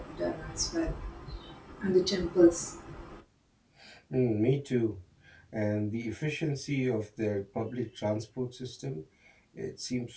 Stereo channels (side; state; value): both; identical; correlation 1.00